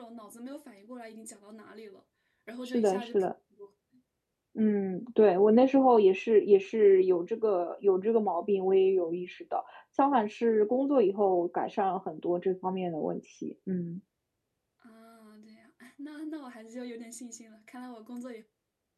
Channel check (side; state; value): both; identical; correlation 1.00